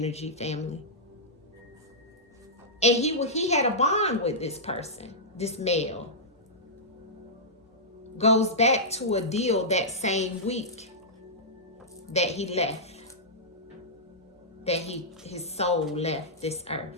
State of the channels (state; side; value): normal; both; correlation -0.12